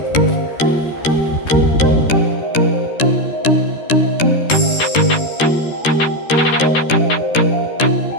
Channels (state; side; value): late; right; 13 ms